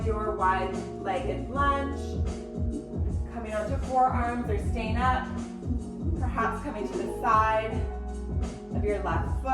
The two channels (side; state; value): both; identical; correlation 1.00